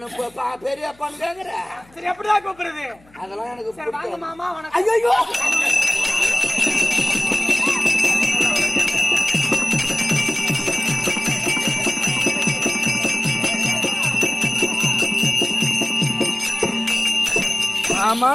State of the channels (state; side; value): noise; left; hum, 29 dB below the sound